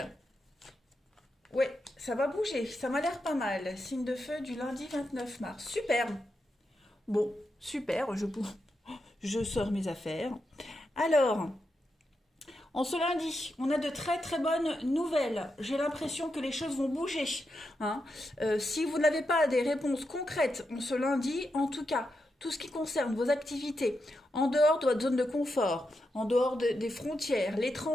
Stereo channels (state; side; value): normal; both; correlation 0.86